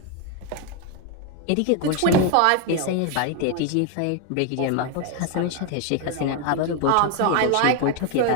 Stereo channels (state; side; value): different; both; correlation 0.01